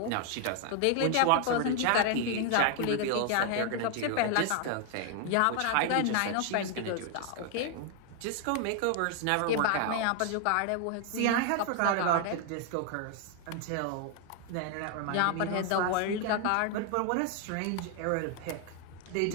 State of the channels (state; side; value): different; both; correlation 0.00